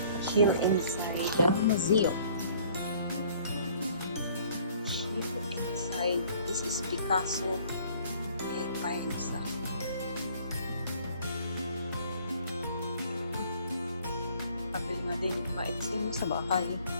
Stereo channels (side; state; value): both; inverted; correlation -0.56